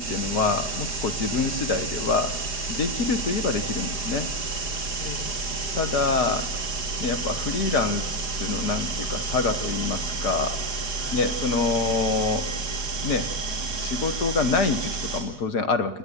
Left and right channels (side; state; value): right; late; 4.9 ms